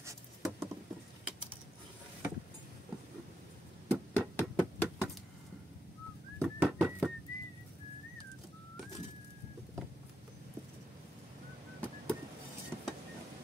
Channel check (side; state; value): both; normal; correlation 0.83